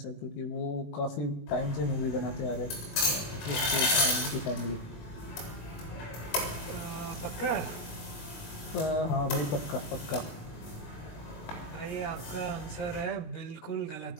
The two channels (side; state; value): right; late; 19 ms